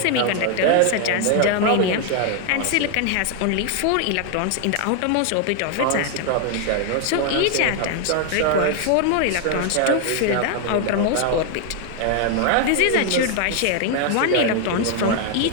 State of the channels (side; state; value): both; different; correlation 0.00